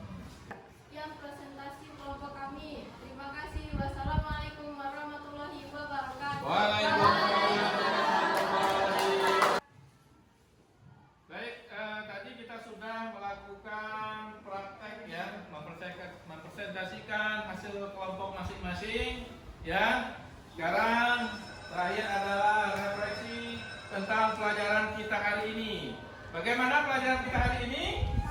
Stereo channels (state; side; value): identical; both; correlation 1.00